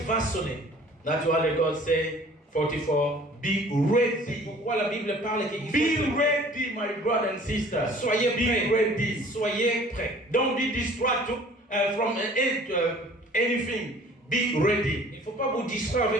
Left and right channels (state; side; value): normal; both; correlation 0.51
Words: vont sonner. That's why the God say, 44, be C'est ready. pourquoi la Bible parle qu'il Be faut ready, my brother and sister. soyez Be prêts. ready. Soyez prêts. Don't be distracted from anything. Be ready. Il ne faut pas vous distraire